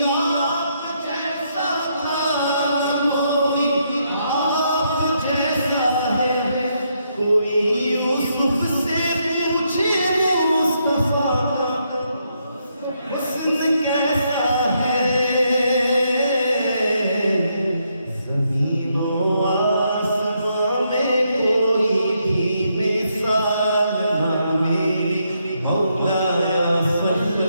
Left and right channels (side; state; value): both; inverted; correlation -0.77